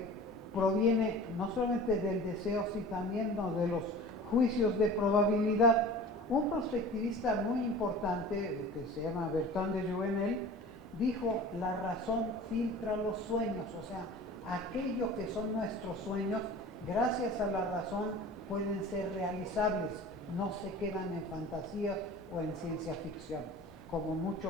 proviene no solamente del deseo, sino también de los juicios de probabilidad. Un prospectivista muy importante, que se llama Bertrand de Jouvenel, dijo: la razón filtra los sueños, o sea, aquello que son nuestros sueños, gracias a la razón pueden ser realizables, no se quedan en fantasías o en ciencia ficción, como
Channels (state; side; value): noise; right; rumble, 28 dB below the sound